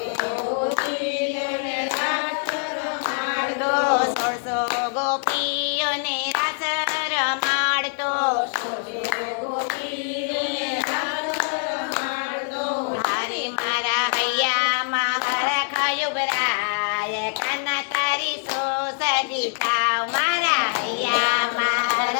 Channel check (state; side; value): silent; right; 59 dB below the other